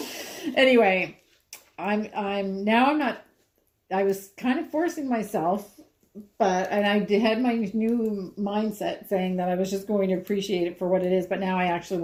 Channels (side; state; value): both; identical; correlation 1.00